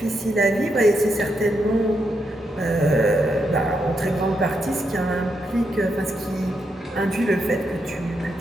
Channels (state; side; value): normal; both; correlation 0.81